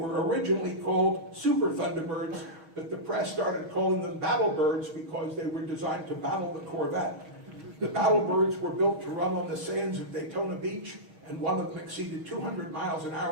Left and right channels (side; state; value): left; late; 6.3 ms